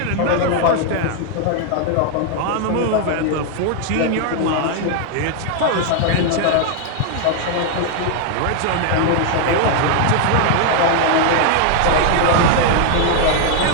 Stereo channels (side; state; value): both; different; correlation 0.00